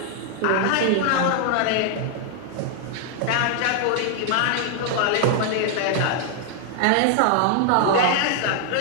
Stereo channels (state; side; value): different; both; correlation 0.00